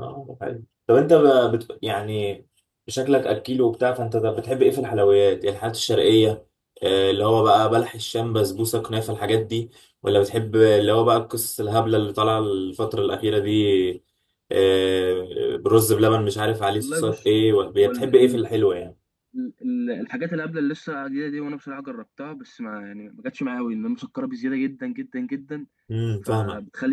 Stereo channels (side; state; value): both; identical; correlation 1.00